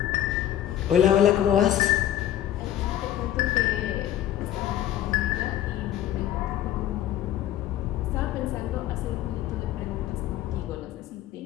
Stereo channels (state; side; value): quieter; right; 12.0 dB